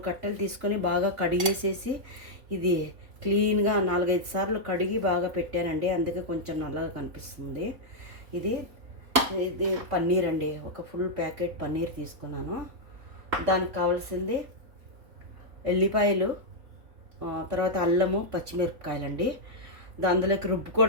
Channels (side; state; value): left; late; 3.8 ms